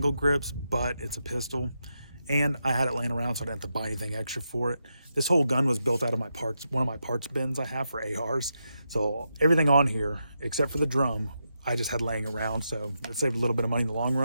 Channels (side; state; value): both; inverted; correlation -0.85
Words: grips, but it's a pistol. And I had it laying around, so I didn't have to buy anything extra for it. This whole gun was built out of my parts, one of my parts bins I have for ARs. So everything on here, except for the drum, I just had laying around, so it saved a little bit of money in the long